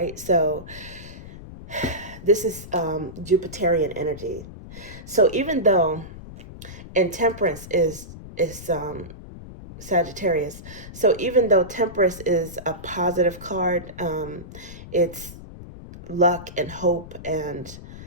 So this is Jupiterian energy. So even though, and Temperance is Sagittarius. So even though Temperance is a positive card, it's luck and hope and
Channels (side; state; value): left; noise; rumble, 14 dB below the sound